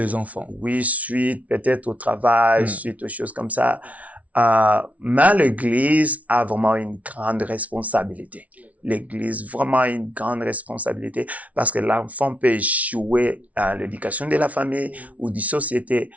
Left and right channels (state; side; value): late; left; 0.068 ms